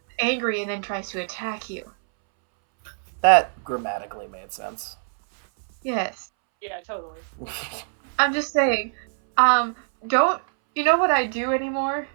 angry and then tries to attack you. That grammatically made sense. Yes. Yeah, totally. I'm just saying, don't, you know what I do anymore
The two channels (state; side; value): silent; left; 63 dB below the other